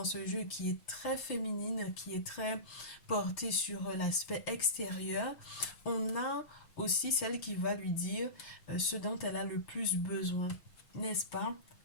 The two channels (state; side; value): late; right; 6.9 ms